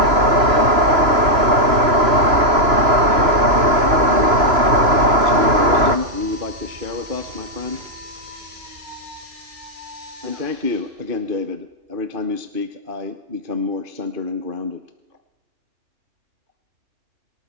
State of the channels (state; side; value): late; left; 3.0 ms